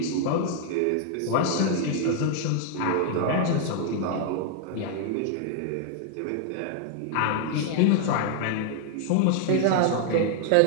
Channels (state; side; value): different; both; correlation 0.00